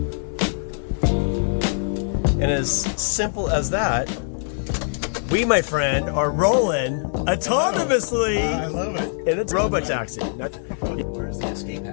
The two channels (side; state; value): right; silent; 64 dB below the other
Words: And as simple as that, we, my friend, are rolling autonomously. I love it. And it's Robo-Taxi. Where's the escape